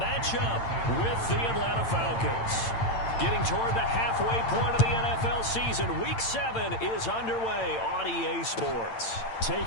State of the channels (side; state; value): right; late; 8.8 ms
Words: up with the Atlanta Falcons. Getting toward the halfway point of the NFL season, Week 7 is underway on EA Sports.